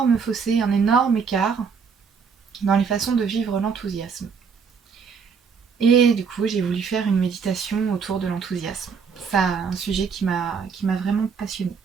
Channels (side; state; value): left; quieter; 5.9 dB